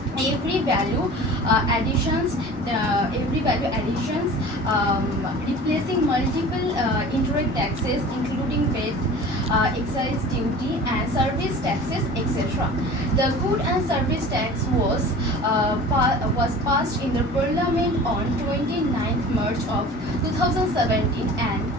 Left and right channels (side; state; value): both; normal; correlation 0.40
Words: every value additions, replacing multiple indirect taxes including VAT, excise duty and service taxes, etc. The good and service tax was passed in the parliament on 29th March of 2017 and